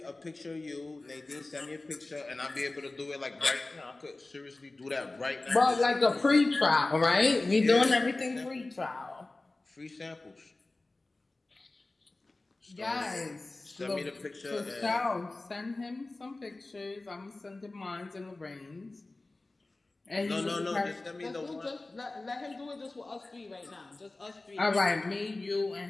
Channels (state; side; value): quieter; right; 3.1 dB